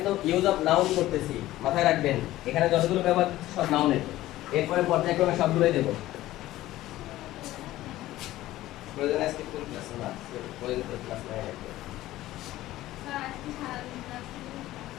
ইউজ অফ নাউন করতেছি, মাথায় রাখবেন। এখানে যতগুলো ব্যবহার করতেছি সব নাউনের। এরপরে পর্যায়ক্রমে সবগুলোই দেব। প্রয়োজন আজকে কোন ক্লাস না? প্রয়োজন তো ক্লাস নাই আজকে।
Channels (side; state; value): right; quieter; 15.7 dB